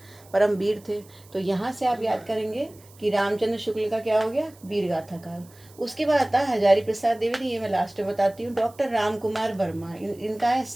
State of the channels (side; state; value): right; noise; hiss, 26 dB below the sound